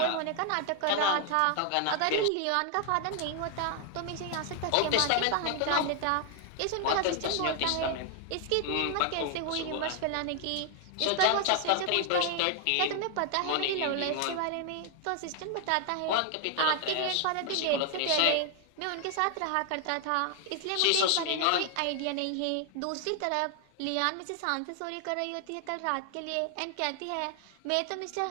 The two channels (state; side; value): different; both; correlation 0.00